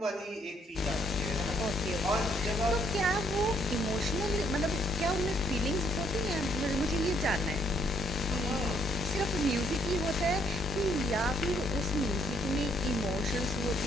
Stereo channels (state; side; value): normal; both; correlation 0.69